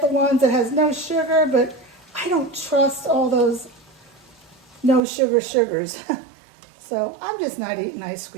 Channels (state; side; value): drops out; left; at 5.0 s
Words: ones that has no sugar, but I don't trust all those no sugar sugars. So I'm just not eating ice